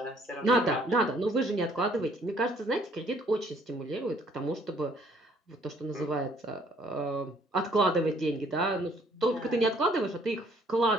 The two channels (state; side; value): normal; both; correlation 0.62